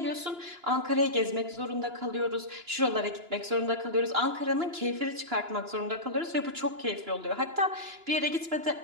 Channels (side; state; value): left; late; 2.9 ms